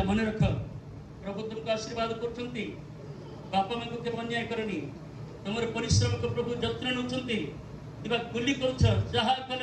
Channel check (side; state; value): both; identical; correlation 1.00